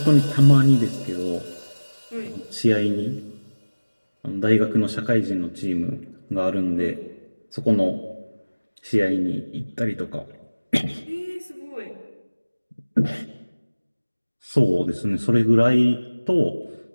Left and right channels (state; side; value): inverted; both; correlation -1.00